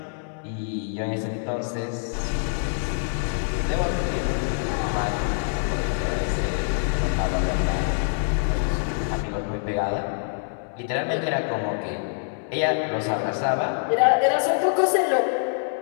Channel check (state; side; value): silent; right; digital silence